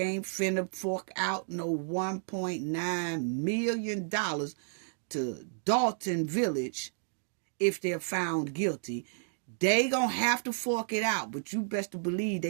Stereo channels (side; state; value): left; silent; digital silence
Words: finna fork out no $1.9 million to Dalton Village if they're found guilty. They gonna have to fork it out, but you best to believe